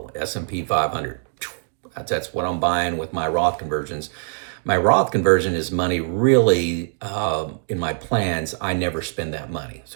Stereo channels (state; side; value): silent; left; 62 dB below the other